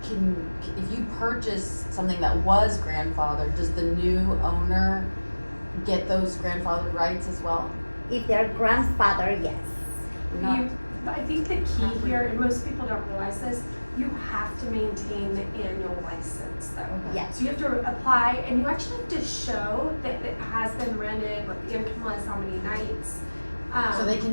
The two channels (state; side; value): inverted; both; correlation -1.00